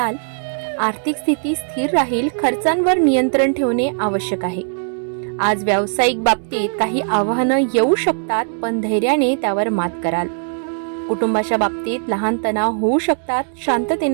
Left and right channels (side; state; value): left; silent; digital silence